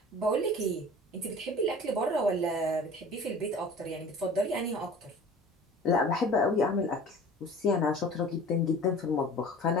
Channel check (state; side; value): normal; both; correlation 0.42